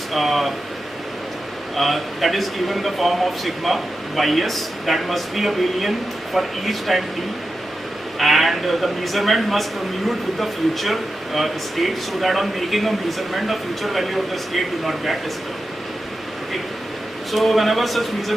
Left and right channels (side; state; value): both; normal; correlation 0.91